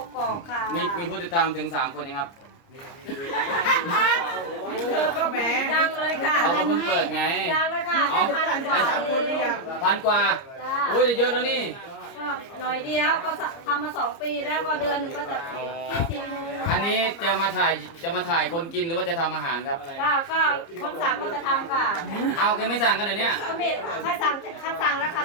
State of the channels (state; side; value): late; right; 30 ms